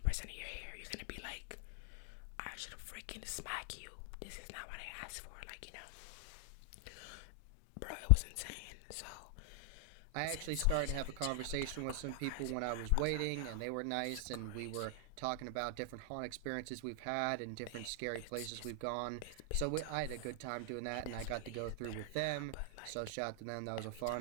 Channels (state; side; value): different; both; correlation 0.00